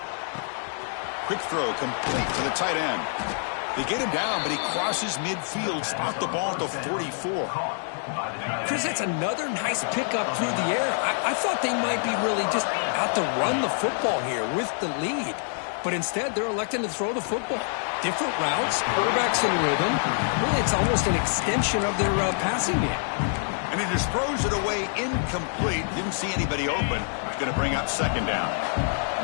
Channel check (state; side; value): silent; right; 61 dB below the other